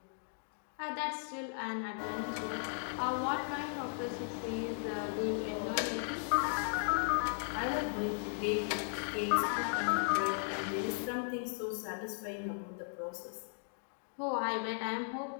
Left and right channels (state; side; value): silent; right; digital silence